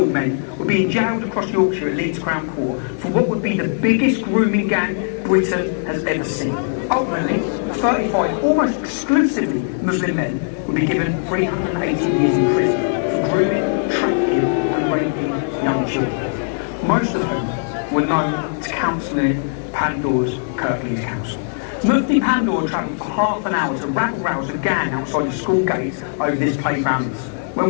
men were being jailed across Yorkshire at Leeds Crown Court for what would be the biggest grooming gang Britain has ever seen. Ultimately, 35 almost exclusively Muslim men would be given 380 years in prison for grooming, trafficking and raping young children. Most of whom were known to Councillor Pandor's Kirklees Council. Mufti Pandor travelled for half an hour to rabble-rouse a gang outside the school gates over this playground. When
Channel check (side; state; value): right; silent; digital silence